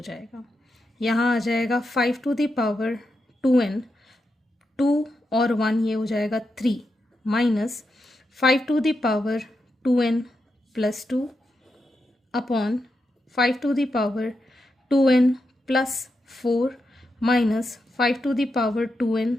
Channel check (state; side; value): normal; both; correlation 0.86